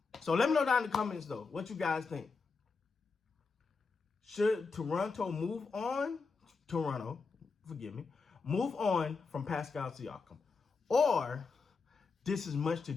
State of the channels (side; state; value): right; quieter; 4.6 dB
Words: So let me know down in the comments though, what you guys think. Should Toronto move on? Move on from Pascal Siakam, or this is much to